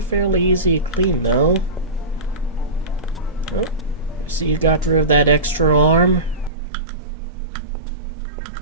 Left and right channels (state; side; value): drops out; left; at 6.5 s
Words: easy to clean though. Oh, see you got rid of that extra arm?